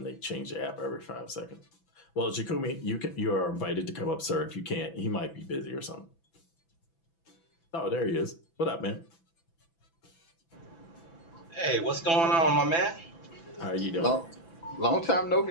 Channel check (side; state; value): right; late; 6.0 ms